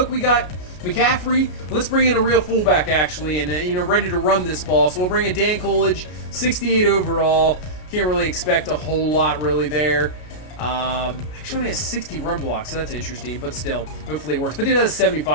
we got McCaffrey. Let's bring in a real fullback, actually, and ready to run this ball. So we'll bring in Dan Coolidge, 68 overall. Can't really expect a whole lot really there. Actually only has 60 run blocks, so that's interesting, but still, hopefully it works. But he does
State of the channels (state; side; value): late; right; 33 ms